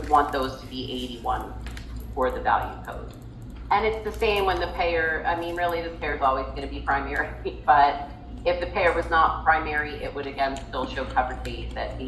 want those to be 81 for the value code. And it's the same when the payer, really this payer is always going to be primary, but if the payer was not primary, it would again still show covered days at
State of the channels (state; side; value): identical; both; correlation 1.00